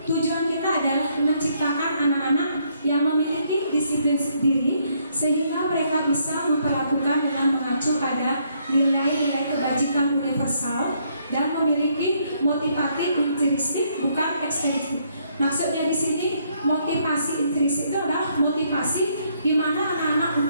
tujuan kita adalah menciptakan anak-anak yang memiliki disiplin sendiri sehingga mereka bisa memperlakukan dengan mengacu pada nilai-nilai kebajikan universal dan memiliki motivasi intrinsik bukan ekstrinsik. Maksudnya di sini motivasi intrinsik itu adalah motivasi di mana anak-anak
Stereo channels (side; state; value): both; inverted; correlation -0.71